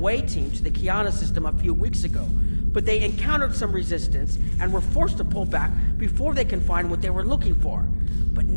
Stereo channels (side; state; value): both; inverted; correlation -1.00